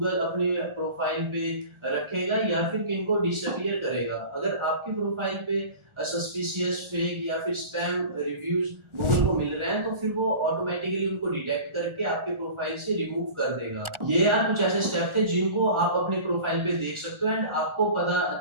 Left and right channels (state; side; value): late; left; 1.4 ms